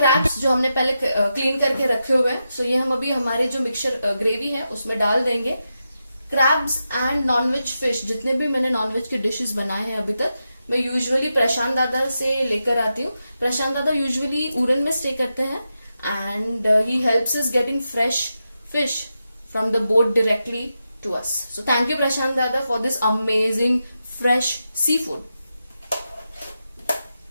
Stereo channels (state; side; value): inverted; both; correlation -0.88